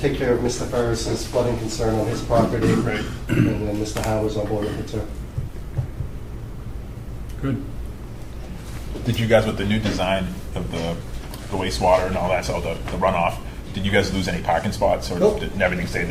care of Mr. Ferris's flooding concern on his property. Right. And then Mr. Howe is on board with it too. Good. Did you guys, with the new design of the wastewater and all that, so the runoff, did you guys lose any parking spots, or Nope. did everything stay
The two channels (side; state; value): both; identical; correlation 1.00